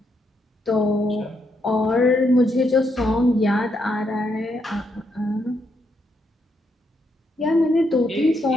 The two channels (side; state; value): both; normal; correlation 0.78